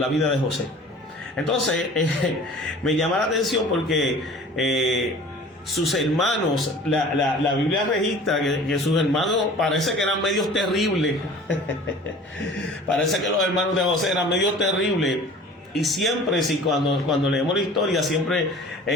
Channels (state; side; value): normal; both; correlation 0.44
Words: vida de José. Entonces me llama la atención porque sus hermanos, la Biblia registra que sus hermanos parece que eran medios terribles. Parece que los hermanos de José eran medios terribles. Y siempre, cuando leemos la historia, siempre